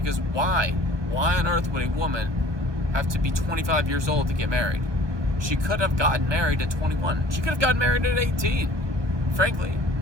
why? Why on earth would a woman have to be 25 years old to get married? She could have gotten married at 21. She could have gotten married at 18. Frankly,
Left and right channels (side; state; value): left; late; 1.2 ms